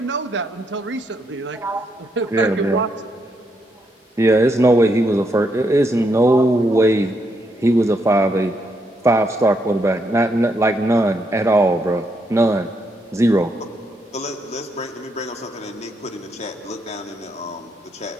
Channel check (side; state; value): both; normal; correlation 0.77